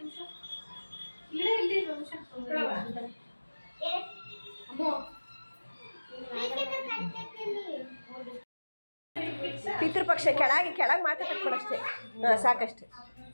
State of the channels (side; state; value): both; inverted; correlation -1.00